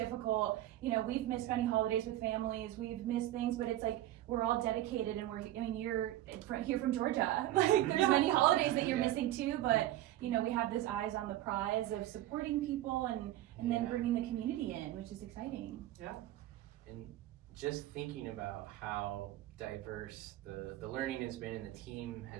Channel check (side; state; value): left; quieter; 14.2 dB